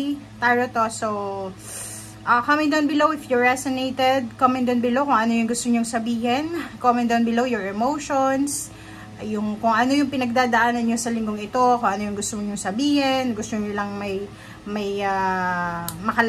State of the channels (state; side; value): identical; both; correlation 1.00